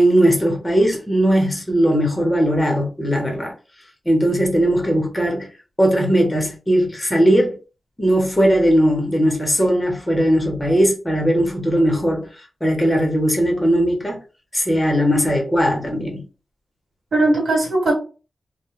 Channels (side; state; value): both; normal; correlation 0.92